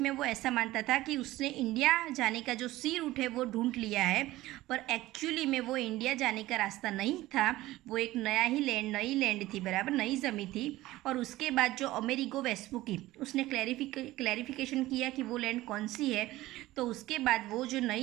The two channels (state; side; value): quieter; left; 17.1 dB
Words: में वो ऐसा मानता था कि उसने इंडिया जाने का जो सी रूट है वो ढूंढ लिया है, पर एक्चुअली में वो इंडिया जाने का रास्ता नहीं था। वो एक नया ही लैंड, नई लैंड थी, बराबर नई ज़मीन थी। और उसके बाद जो अमेरिगो वेस्पुकी उसने क्लैरिफिकेशन किया कि वो लैंड कौन सी है, तो उसके बाद वो जो